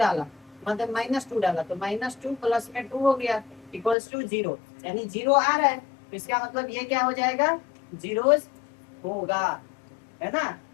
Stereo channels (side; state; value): right; drops out; at 4.0 s